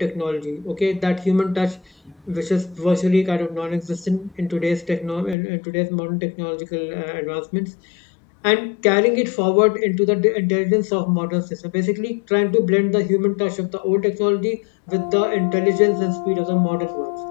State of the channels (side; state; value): right; drops out; at 5.4 s